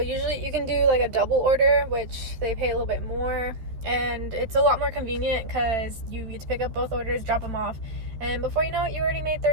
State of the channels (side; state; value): left; late; 13 ms